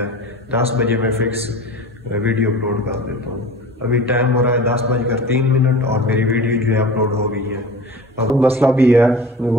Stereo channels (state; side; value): normal; both; correlation 0.37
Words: 10 बजे मैं फिक्स वीडियो अपलोड कर देता हूँ। अभी टाइम हो रहा है 10:03 और मेरी वीडियो जो है अपलोड हो गई है। अब मसला भी है,